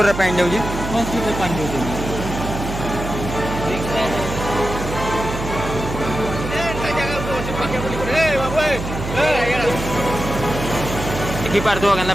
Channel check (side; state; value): right; noise; hum, 6 dB below the sound